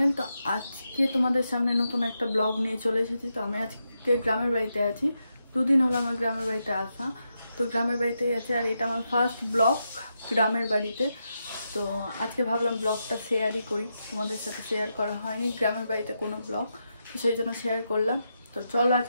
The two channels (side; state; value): both; inverted; correlation -0.85